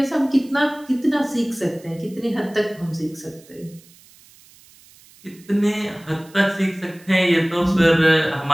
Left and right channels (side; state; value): right; noise; hiss, 26 dB below the sound